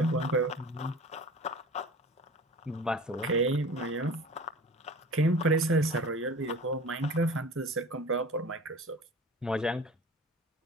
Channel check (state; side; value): normal; both; correlation 0.39